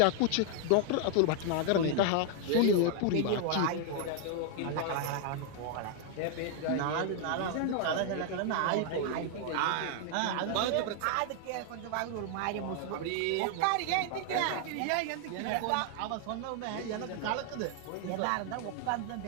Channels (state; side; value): different; both; correlation 0.00